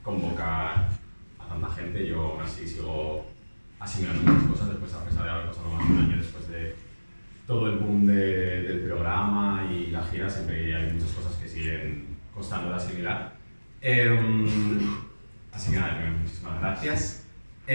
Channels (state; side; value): inverted; both; correlation -1.00